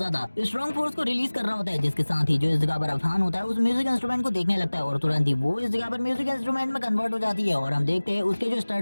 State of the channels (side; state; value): both; inverted; correlation -1.00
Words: स्ट्रॉन्ग फोर्स को रिलीज कर रहा होता है। जिसके साथ ही जो इस जगह पर अफहान होता है उस म्यूजिक इंस्ट्रूमेंट को देखने लगता है और तुरंत ही वो इस जगह पर म्यूजिक इंस्ट्रूमेंट में कन्वर्ट हो जाती है। और हम देखते हैं उसके जो